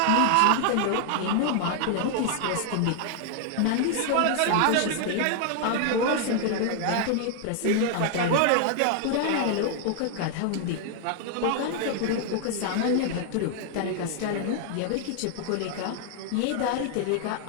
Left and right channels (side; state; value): both; different; correlation 0.00